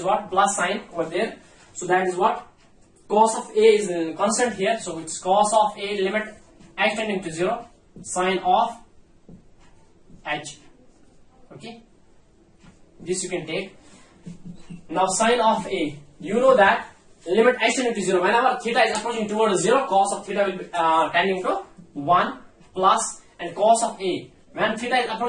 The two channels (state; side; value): identical; both; correlation 1.00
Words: what, plus sign over there, so that is what, cos of A is constant here, so it's cos of A limit h tending to 0 sine of h, okay. This you can take. Now sine of A, you know that limit x tending to 0, whenever theta is approaching towards 0, cos of theta will be tending to 1 plus, and cos of A, when theta is